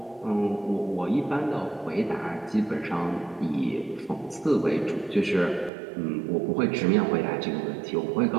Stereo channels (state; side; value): drops out; left; at 5.7 s